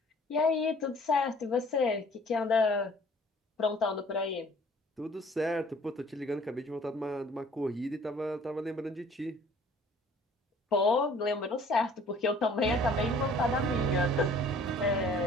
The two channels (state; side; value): normal; both; correlation 0.54